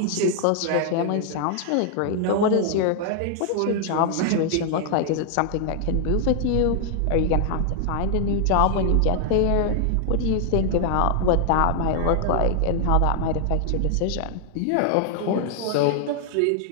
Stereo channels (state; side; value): different; both; correlation 0.00